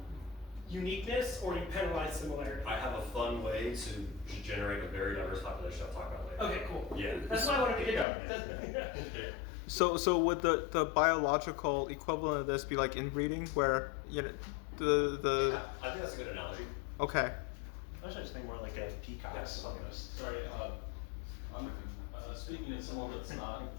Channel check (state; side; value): drops out; right; at 8.1 s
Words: uniqueness or you penalize similarity. I have a fun way to generate a very diverse population I'll talk about later. Okay, cool. Yeah. That's why I wanted to get to. Yeah. So would the biological equivalent of this be like inbreeding, where the I think that's a good analogy. okay. I was just thinking more like a peacocks almost. Sorry, I'm speaking as someone that's not